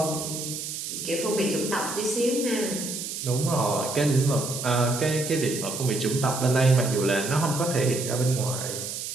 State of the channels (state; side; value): noise; right; hiss, 6 dB below the sound